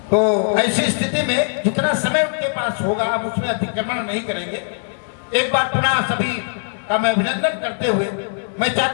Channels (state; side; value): silent; right; 66 dB below the other